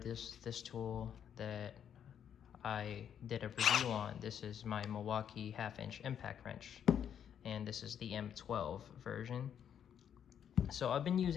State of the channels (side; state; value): right; quieter; 8.8 dB